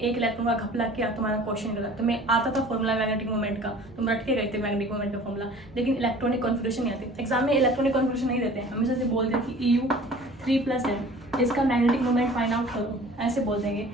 इलेक्ट्रॉन का घपला किया तुम्हारा क्वेश्चन गलत। तुम्हें आता था फॉर्मूला मैग्नेटिक मूवमेंट का, तुम रट के गए थे मैग्नेटिक मूवमेंट का फॉर्मूला, लेकिन इलेक्ट्रॉनिक कॉन्फ़िगरेशन नहीं आती। एग्जाम में इलेक्ट्रॉनिक कॉन्फ़िगरेशन नहीं देते हैं, हमेशा से बोलते हैं कि EU 3+ है, इसका मैग्नेटिक मूवमेंट फाइंड आउट करो, ऐसे बोल देंगे।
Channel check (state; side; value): normal; both; correlation 0.46